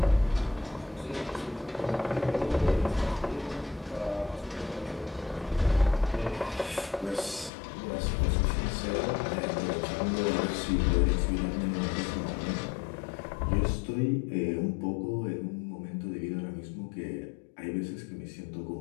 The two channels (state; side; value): drops out; right; at 7.5 s